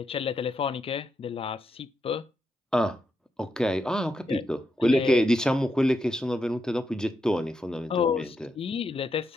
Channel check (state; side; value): normal; both; correlation 0.83